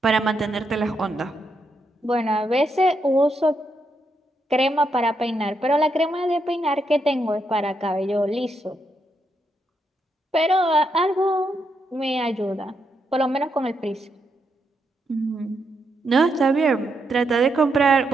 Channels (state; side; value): normal; both; correlation 0.80